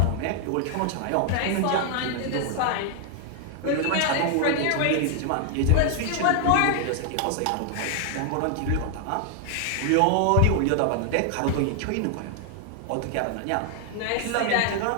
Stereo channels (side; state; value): both; different; correlation 0.00